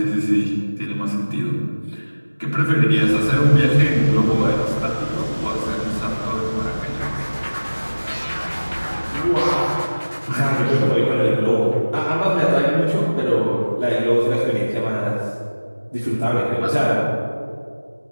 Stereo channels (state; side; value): inverted; both; correlation -1.00